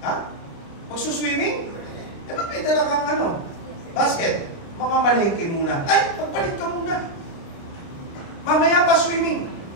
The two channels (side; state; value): right; late; 29 ms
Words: ha? Magsuswimming? Eh, ba't may dala kang basket? Mamamalengke muna. Ay, magpalit ka muna. Mamaya pa swimming.